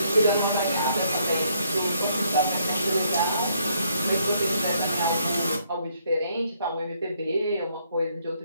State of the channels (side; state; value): both; inverted; correlation -0.70